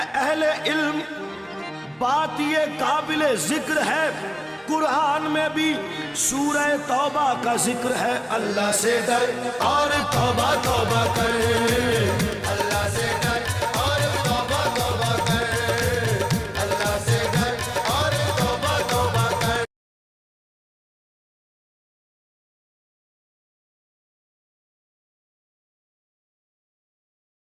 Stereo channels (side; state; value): both; identical; correlation 1.00